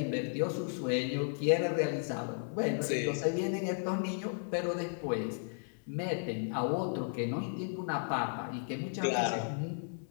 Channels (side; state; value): right; silent; digital silence